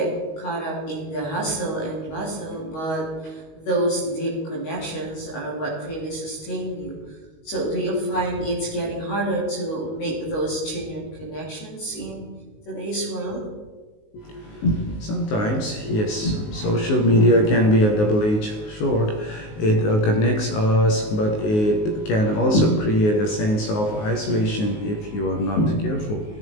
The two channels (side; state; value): right; late; 19 ms